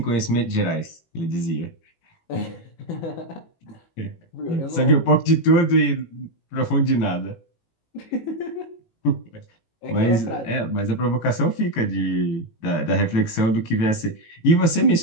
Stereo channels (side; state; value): right; late; 18 ms